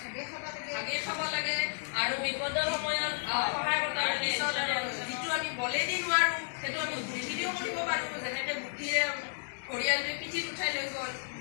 ভাগে খাব লাগে আৰু বিপদৰ সময়ত সহায় কৰিব লাগে। যিটো আমি বলেদি নোৱাৰোঁ সেইটো আমি বুদ্ধিৰেও কৰিব পাৰোঁ, যেনেকৈ বুদ্ধিৰে ঘৰিয়ালটোৱে পিঠিত উঠাই লৈ গ'ল।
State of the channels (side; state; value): right; silent; 56 dB below the other